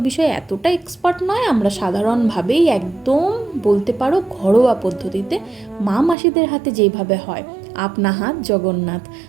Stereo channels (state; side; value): drops out; left; at 6.2 s